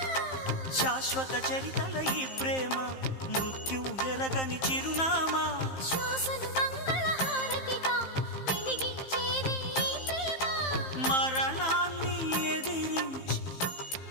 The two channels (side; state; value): right; late; 15 ms